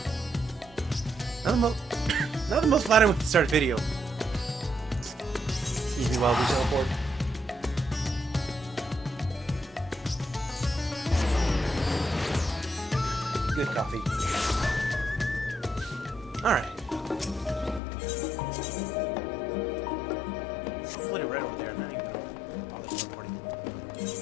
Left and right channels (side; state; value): right; drops out; at 17.8 s